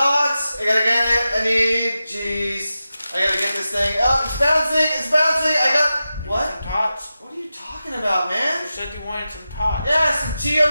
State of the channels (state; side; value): inverted; both; correlation -0.92